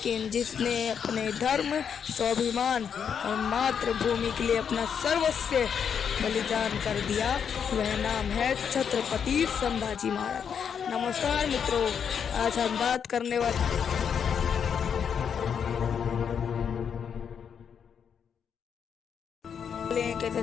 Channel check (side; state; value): right; quieter; 7.4 dB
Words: जिसने अपने धर्म, स्वाभिमान और मातृभूमि के लिए अपना सर्वस्व बलिदान कर दिया, वह नाम है छत्रपति संभाजी महाराज। नमस्कार मित्रों, आज हम बात करने वाले एक ऐसे